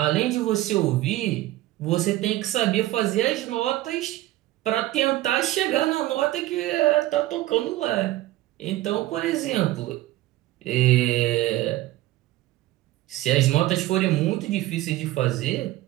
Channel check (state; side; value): quieter; left; 16.2 dB